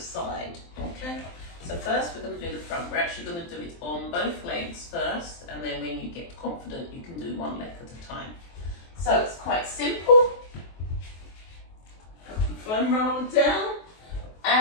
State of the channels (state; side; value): late; right; 23 ms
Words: Okay? So first we're going to do the front. We're actually going to do it on both legs first, and then when you get confident you can do one leg at a time. So it's quite simple. Foam roller down,